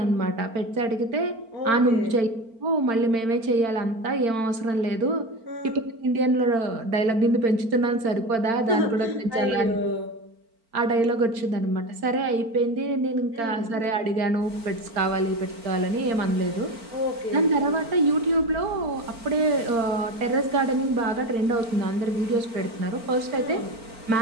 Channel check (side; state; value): left; late; 4.4 ms